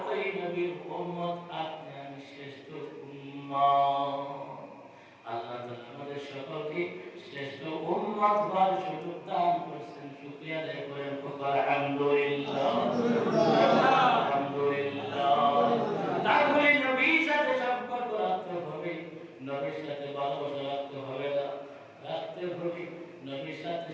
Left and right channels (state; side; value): identical; both; correlation 1.00